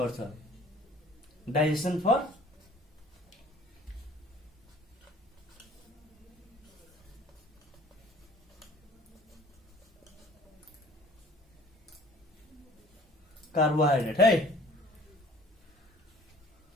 डाइजेसन फर कार्बोहाइड्रेट है।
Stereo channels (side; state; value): both; normal; correlation 0.51